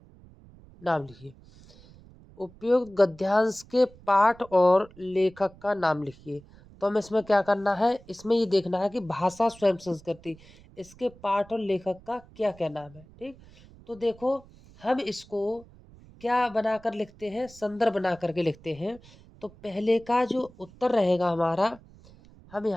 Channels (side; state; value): right; noise; rumble, 23 dB below the sound